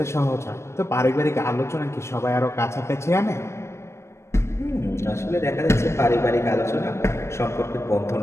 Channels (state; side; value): late; right; 0.13 ms